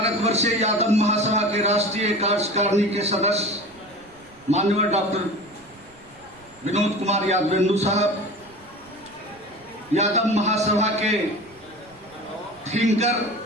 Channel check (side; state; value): right; noise; rumble, 28 dB below the sound